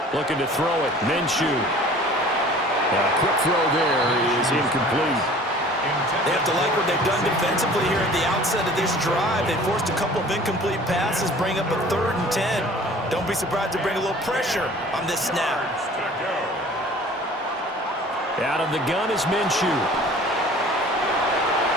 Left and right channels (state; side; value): normal; both; correlation 0.47